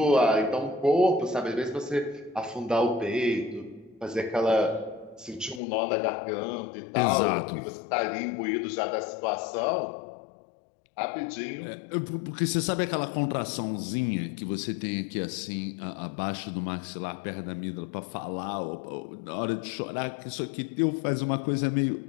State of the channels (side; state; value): right; drops out; at 5.6 s